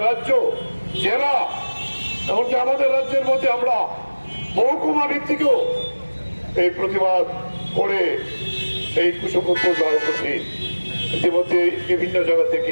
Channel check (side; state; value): both; inverted; correlation -1.00